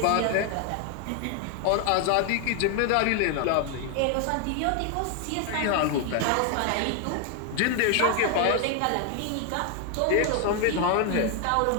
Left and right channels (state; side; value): different; both; correlation 0.00